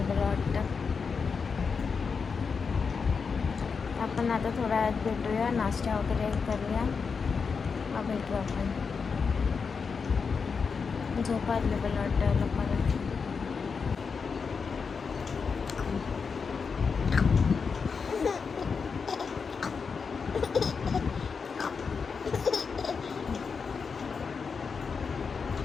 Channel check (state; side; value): quieter; right; 5.4 dB